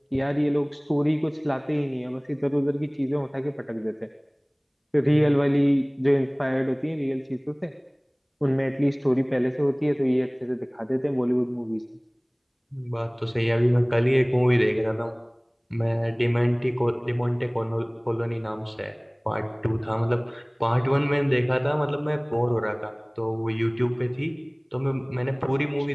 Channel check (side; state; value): both; identical; correlation 1.00